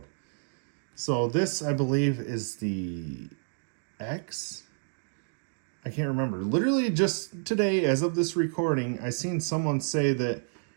So this, I believe, is the X. I can't remember. Literally just today, as of this recording, I seen someone say that,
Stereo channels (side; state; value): left; silent; digital silence